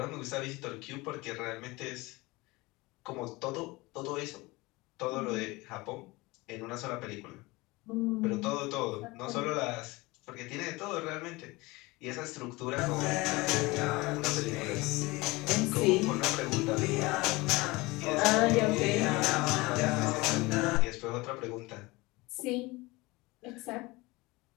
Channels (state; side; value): quieter; right; 22.6 dB